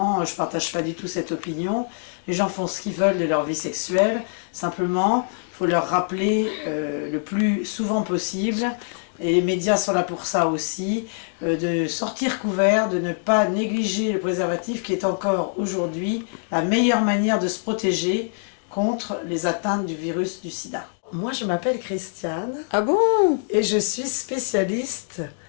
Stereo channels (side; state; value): right; silent; digital silence